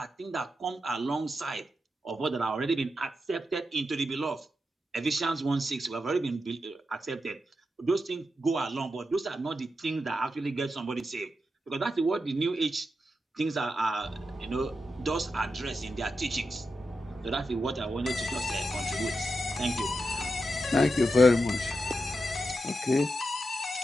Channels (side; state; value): both; normal; correlation 0.88